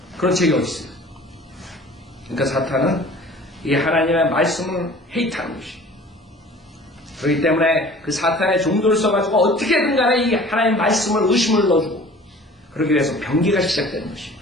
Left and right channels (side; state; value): both; normal; correlation 0.46